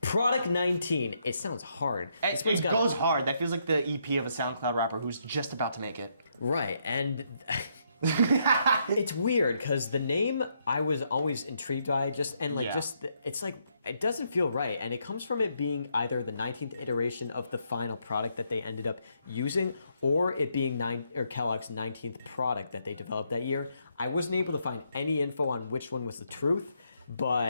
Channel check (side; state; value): both; inverted; correlation -0.76